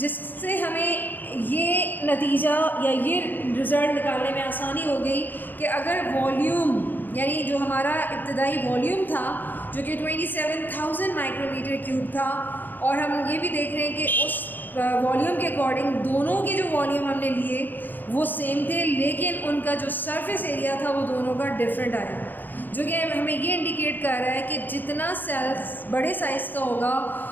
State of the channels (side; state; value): right; late; 0.091 ms